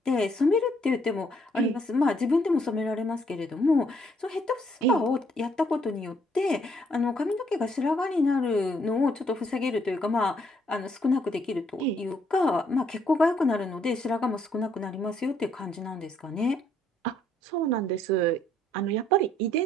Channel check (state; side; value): normal; both; correlation 0.69